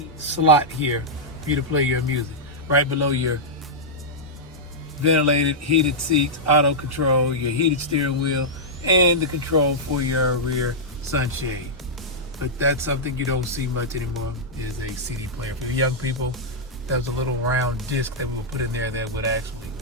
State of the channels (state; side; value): normal; both; correlation -0.08